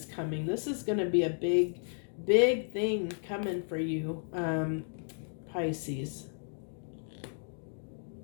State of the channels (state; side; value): silent; right; digital silence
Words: coming. This is going to be a big thing coming for you, Pisces.